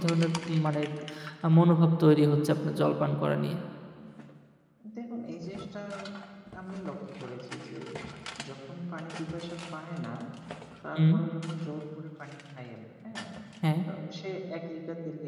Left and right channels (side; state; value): both; identical; correlation 1.00